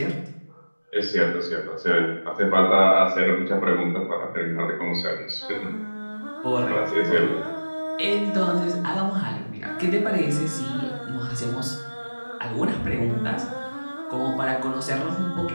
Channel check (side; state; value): both; inverted; correlation -1.00